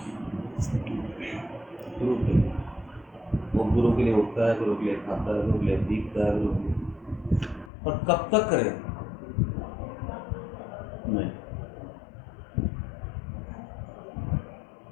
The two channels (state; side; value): drops out; right; at 7.7 s